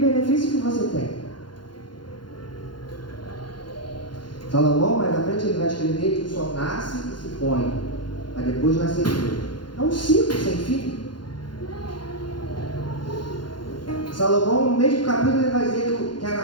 que você tem? Salomão, mais à frente, ele vai escrever que o sol nasce e se põe, mas depois nasce de novo. É um ciclo sem fim. Salomão, no mesmo capítulo, ele vai dizer que a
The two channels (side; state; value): right; late; 0.71 ms